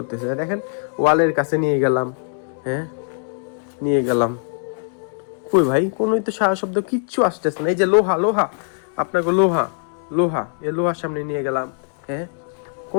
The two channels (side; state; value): right; silent; 65 dB below the other